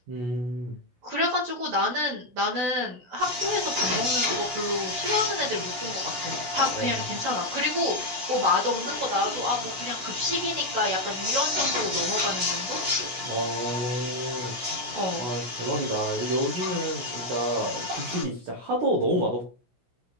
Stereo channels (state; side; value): late; left; 16 ms